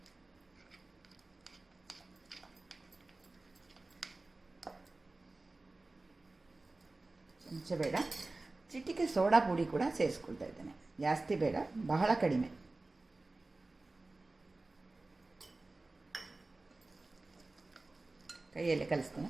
ಚಮಚ ಬೇಡ, ಚಿಟಿಕೆ ಸೋಡಾ ಪುಡಿ ಕೂಡ ಸೇರಿಸ್ಕೊಳ್ತಾ ಇದ್ದೇನೆ. ಜಾಸ್ತಿ ಬೇಡ, ಬಹಳ ಕಡಿಮೆ. ಕೈಯಲ್ಲಿ ಕಲಿಸ್ತೇನೆ.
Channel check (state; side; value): quieter; left; 3.2 dB